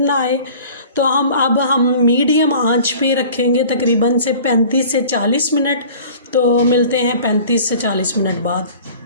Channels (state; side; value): inverted; both; correlation -0.45